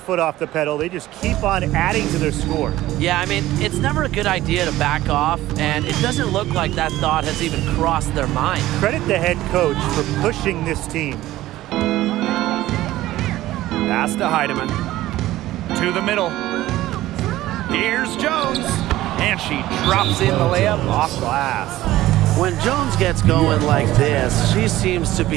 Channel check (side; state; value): left; quieter; 15.7 dB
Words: off the pedal. They just keep on adding to their score. Yeah, I mean, it's never a good idea to back off, and it doesn't look like that thought has even crossed their mind. Credit the head coach for pushing this team. Pass to Heidemann. To the middle. Here's Jones. And she drops in the layup off glass. When Jones gets going like this, she seems to